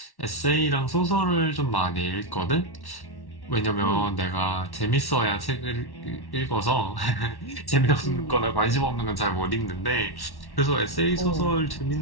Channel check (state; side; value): late; right; 1.1 ms